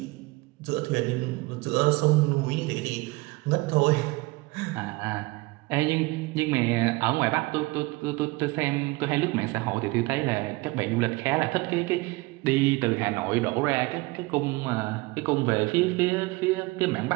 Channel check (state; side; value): quieter; left; 23.0 dB